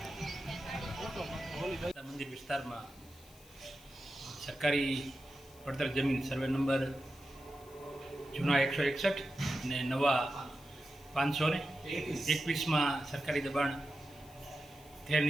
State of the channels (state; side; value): noise; left; hiss, 23 dB below the sound